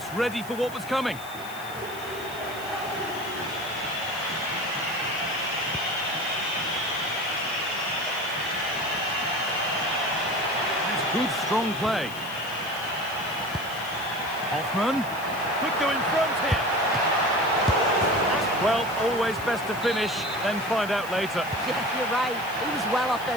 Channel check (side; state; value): left; noise; hiss, 17 dB below the sound